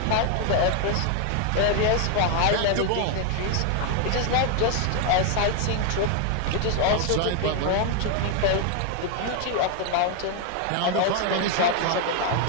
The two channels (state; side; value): different; both; correlation 0.00